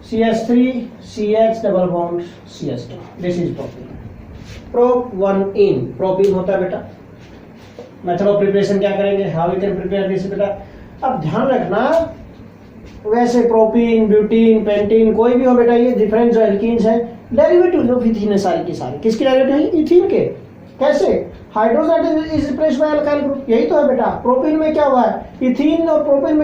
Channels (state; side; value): identical; both; correlation 1.00